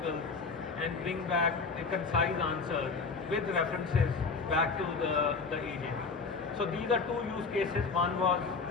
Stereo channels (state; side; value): quieter; right; 4.6 dB